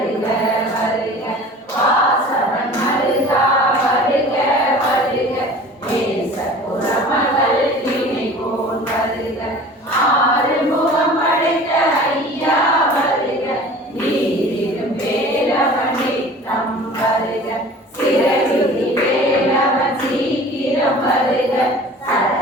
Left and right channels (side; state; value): both; normal; correlation 0.43